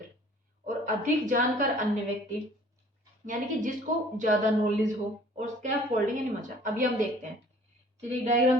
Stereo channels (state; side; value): normal; both; correlation 0.52